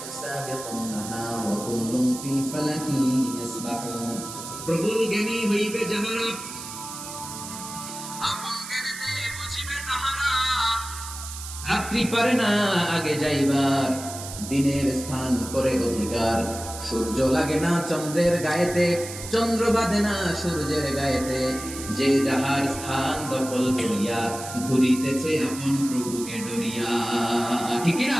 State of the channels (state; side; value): noise; right; hiss, 10 dB below the sound